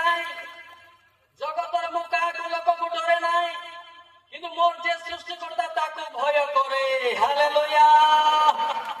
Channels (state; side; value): identical; both; correlation 1.00